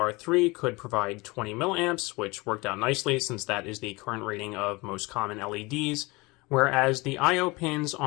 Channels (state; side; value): quieter; right; 24.2 dB